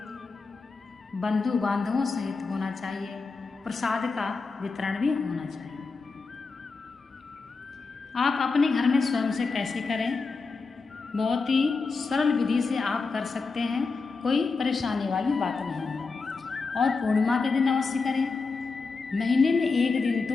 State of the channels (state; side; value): quieter; right; 4.4 dB